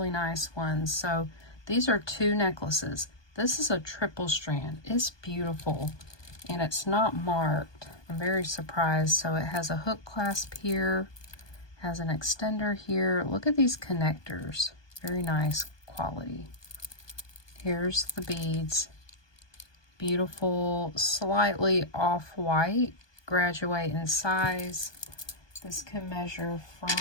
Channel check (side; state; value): right; late; 1.2 ms